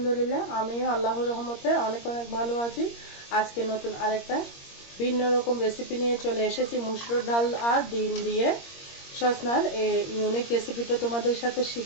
আমিও আল্লাহর রহমতে অনেক অনেক ভালো আছি। আজকে নতুন আরেকটা ভিন্ন রকম রেসিপি নিয়ে চলে এসেছি। মুসুর ডাল আর ডিম দিয়ে সসনার এই ইউনিক রেসিপিটা তোমাদের সাথে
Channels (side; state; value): right; late; 21 ms